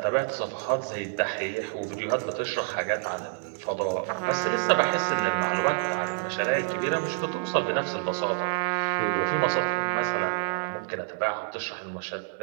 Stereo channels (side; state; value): left; silent; digital silence